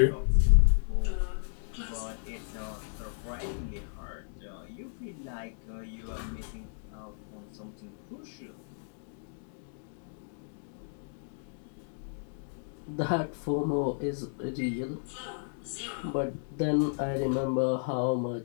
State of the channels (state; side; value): silent; right; digital silence